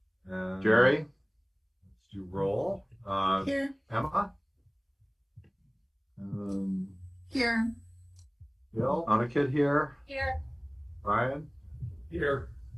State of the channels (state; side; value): identical; both; correlation 1.00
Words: And Jerry? Let's do roll. Here. Emma? Here. Gil? Anakit here. Here. Ryan? Here.